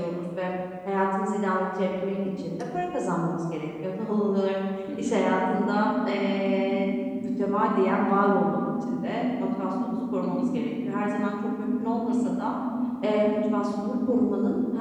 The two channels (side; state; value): both; identical; correlation 1.00